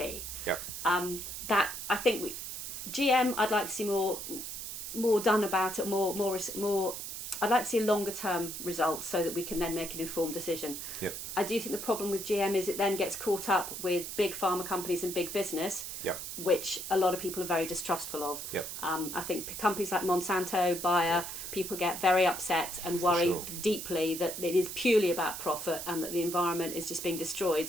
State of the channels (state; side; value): noise; right; hiss, 7 dB below the sound